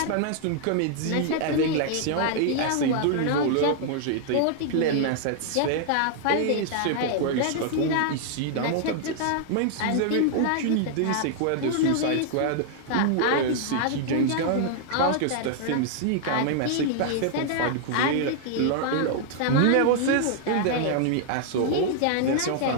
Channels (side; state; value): both; different; correlation -0.01